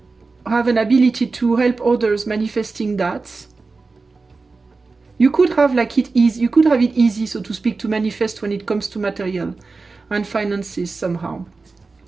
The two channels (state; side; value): quieter; left; 4.0 dB